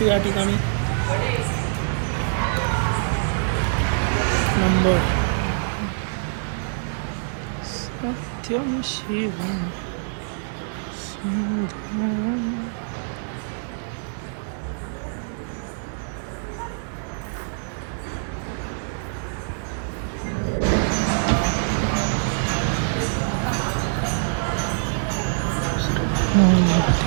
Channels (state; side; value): silent; left; 62 dB below the other